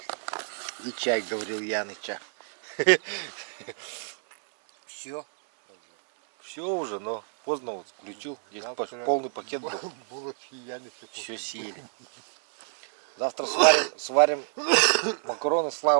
И чай, говорил Яныча. Все. Все уже, но поздно вот включил. Здесь полный пакет был. Булочки Яны. Все съели. Завтра сварим макароны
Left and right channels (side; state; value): left; silent; 57 dB below the other